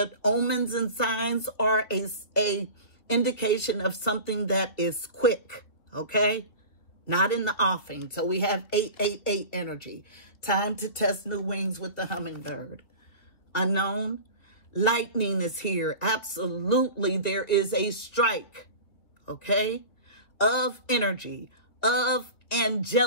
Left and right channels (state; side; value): late; right; 2.8 ms